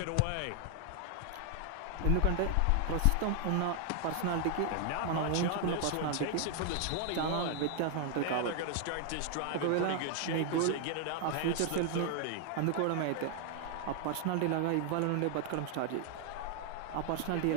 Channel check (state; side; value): different; both; correlation 0.00